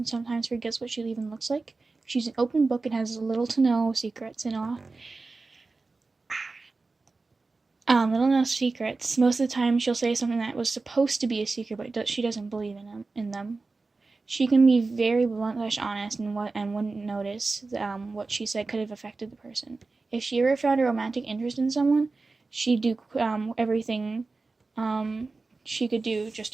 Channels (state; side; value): quieter; left; 3.8 dB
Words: sometimes forgets what she even looks like. She's an open book and has little to no secrets and all. Little to no secrets. Most of the time she'll say something that was supposed to be a secret, but she doesn't believe in them. She can be very blunt / honest and wouldn't notice what she said could have affected the person. If she ever found a romantic interest in someone, she'd do everything she could do just